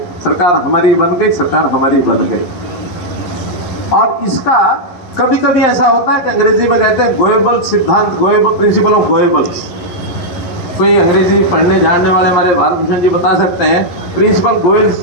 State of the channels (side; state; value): right; late; 11 ms